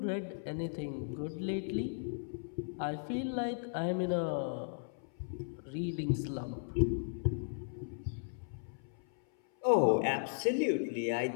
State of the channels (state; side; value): silent; right; 54 dB below the other